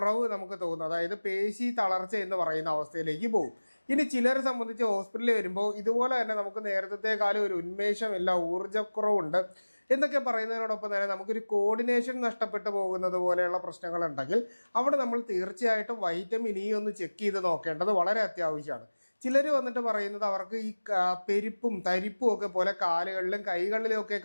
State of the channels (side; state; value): both; inverted; correlation -1.00